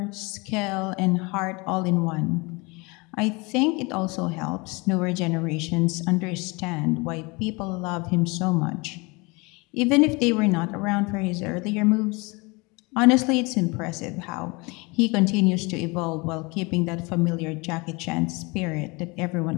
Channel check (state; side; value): quieter; right; 26.8 dB